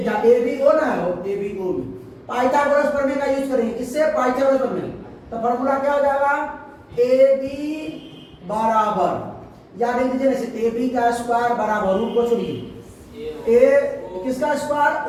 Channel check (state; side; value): identical; both; correlation 1.00